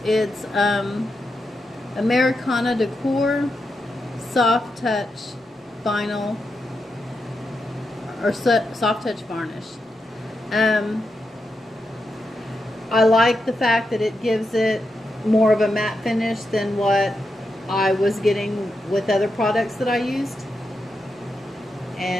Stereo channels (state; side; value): normal; both; correlation 0.86